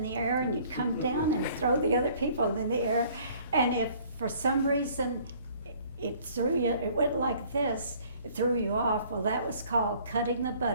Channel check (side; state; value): both; inverted; correlation -0.56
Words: the air and you'd come down and throw the other people in the air. And if for some reason it threw you, it went like this, it threw you off, well, that was called cutting the